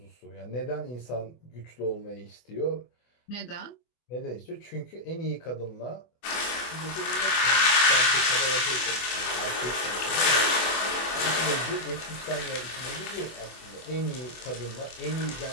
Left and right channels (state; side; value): late; right; 24 ms